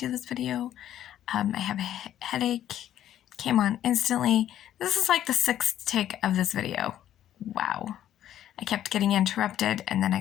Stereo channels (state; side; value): quieter; right; 11.5 dB